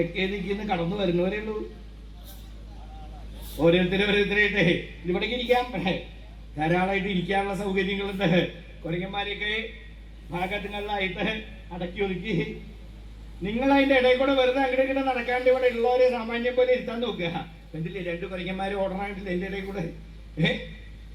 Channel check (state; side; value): identical; both; correlation 1.00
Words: ദിക്കിന്ന് കടന്നു വരുന്നവരേ ഉള്ളൂ. ഓരോരുത്തരായിട്ടേ ഇവിടേക്ക് ഇരിക്കാം, ധാരാളമായിട്ട് ഇരിക്കാനുള്ള സൗകര്യങ്ങളുണ്ട്. കുരങ്ങന്മാരെയൊക്കെ ഭാഗങ്ങളിലായിട്ട് അടക്കി ഒതുക്കി നിങ്ങൾ അതിന്റെ ഇടയിൽ കൂടെ വെറുതെ അങ്ങോട്ട് നടക്കാണ്ട് ഇവിടെ ഉള്ളവരെ സാമാന്യം പോലെ ഇരുത്താൻ നോക്കുക. എന്തില്ലേ 2 കുരങ്ങന്മാര് ഓടണായിട്ടില്ല എന്റെ ഇടയിൽ കൂടെ.